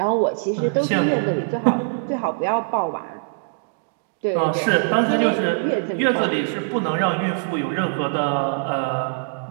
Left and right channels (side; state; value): left; silent; digital silence